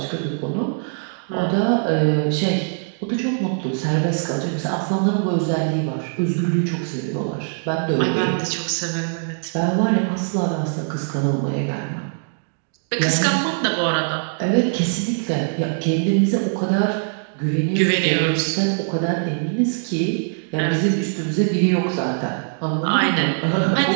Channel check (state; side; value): silent; left; 64 dB below the other